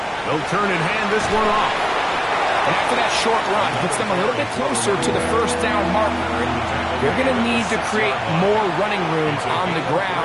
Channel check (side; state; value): both; identical; correlation 1.00